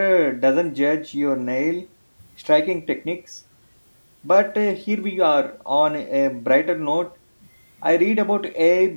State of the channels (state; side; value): inverted; both; correlation -1.00